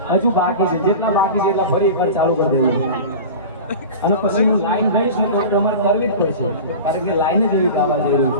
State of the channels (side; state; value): both; inverted; correlation -0.33